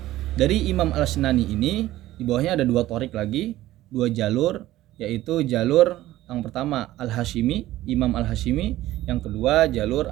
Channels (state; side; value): quieter; left; 15.4 dB